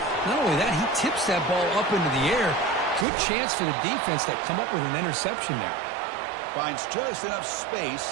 Not only that, he tips that ball up into the air. Good chance for the defense to come up with an interception there. Finds just enough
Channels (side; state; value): left; drops out; at 3.1 s